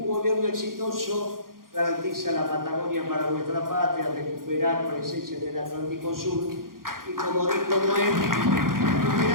gobierno exitoso garantiza la Patagonia para nuestra patria, recuperar presencia en el Atlántico Sur. Y como dijo Noé,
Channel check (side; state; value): left; late; 0.91 ms